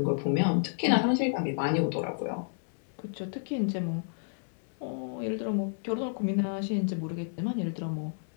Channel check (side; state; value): right; silent; digital silence